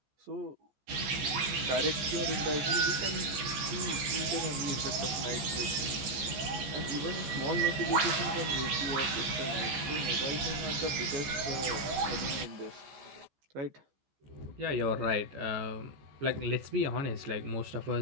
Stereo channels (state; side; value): late; left; 15 ms